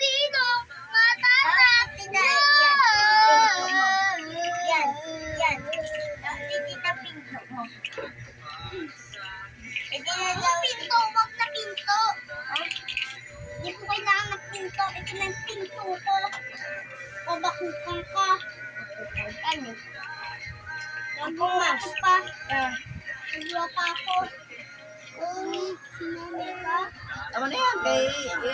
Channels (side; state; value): both; identical; correlation 1.00